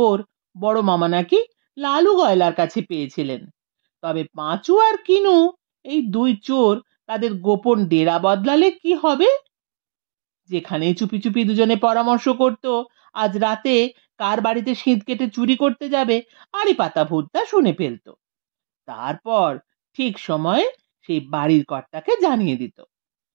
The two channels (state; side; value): silent; left; digital silence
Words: বড় মামা নাকি লালু গয়লার কাছে পেয়েছিলেন। তবে পাঁচু আর কিনু, এই দুই চোর, তাদের গোপন ডেরা বদলালে কি হবে? যেখানেই চুপি চুপি দুজনে পরামর্শ করত আজ রাতে কার বাড়িতে শীত কেটে চুরি করতে যাবে, আড়ি পাতা ভূতটা শুনে ফেলতো। তারপর ঠিক সময়ে সেই বাড়ির কর্তাকে জানিয়ে দিত।